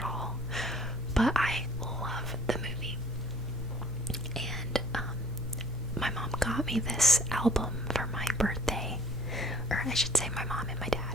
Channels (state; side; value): normal; both; correlation 0.55